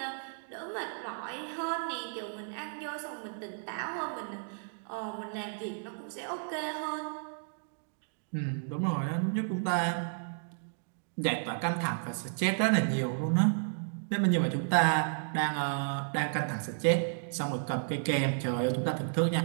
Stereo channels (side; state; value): left; silent; digital silence